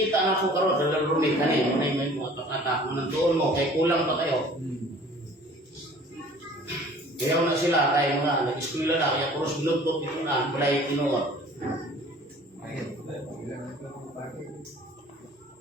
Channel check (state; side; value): normal; both; correlation 0.49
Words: na ako karon sa rumit kanin. Muna yung may mga pagkatak. Muna doon mo, kay kulang pa kayo. Kaya na sila, kaya mga nag-eskwila na, kaya puros binuntot ito na, balay tinuot.